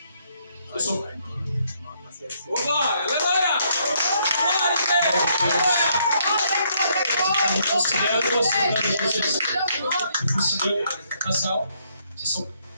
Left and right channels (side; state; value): both; inverted; correlation -0.71